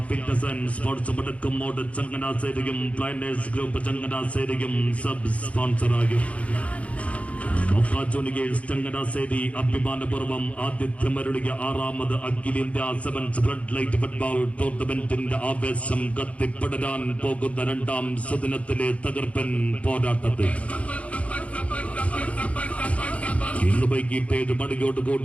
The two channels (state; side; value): late; right; 0.065 ms